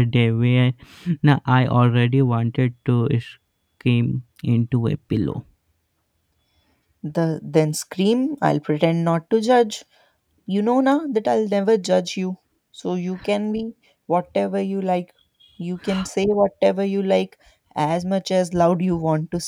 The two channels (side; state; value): both; identical; correlation 1.00